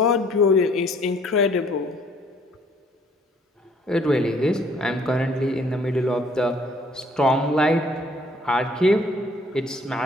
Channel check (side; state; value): both; normal; correlation 0.60